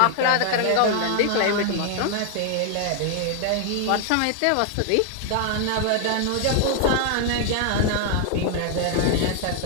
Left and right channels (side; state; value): both; different; correlation 0.00